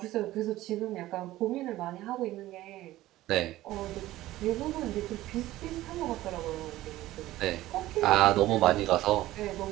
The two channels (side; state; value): left; quieter; 16.0 dB